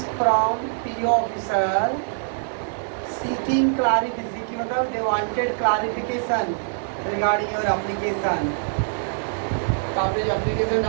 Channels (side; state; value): left; silent; digital silence